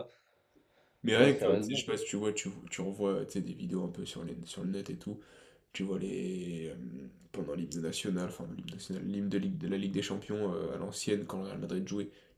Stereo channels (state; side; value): identical; both; correlation 1.00